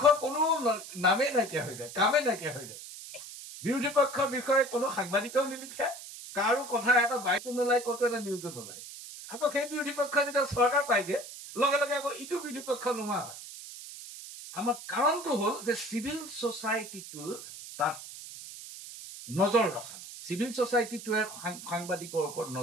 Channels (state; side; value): noise; right; hiss, 13 dB below the sound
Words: কোনো নামেই নাইকিয়া হৈ যায় কামেই নাইকিয়া হৈ যায় বিৰোধী পক্ষৰ বিষয়ে কোনো সাংবাদিকেও নিলিখে কাৰো কথা এটা বাইকো নোলায় ক'তো এটা নিউজো নোলায় আকৌ সেই বিৰোধী পক্ষ যেতিয়া চৰকাৰ পাইগে লগে লগে আকৌ ইটো বিৰোধী পক্ষ নোহোৱা হয় আমাৰ কাৰণটো হ'ল যে চিভিল সোসাইটিটো তাত নজৰ ৰখা নাই চিভিল সোসাইটিটোৱে সাংবাদিকৰ ওপৰত